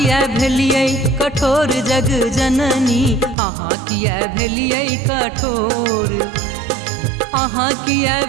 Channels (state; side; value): drops out; left; at 3.4 s